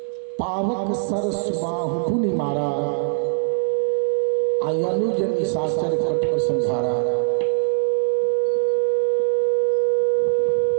पावक सर सुबाहु पुनि मारा, अनुज निशाचर कटुक संधारा।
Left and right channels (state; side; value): silent; left; digital silence